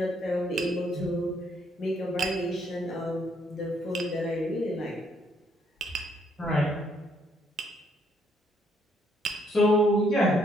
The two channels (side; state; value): both; normal; correlation 0.70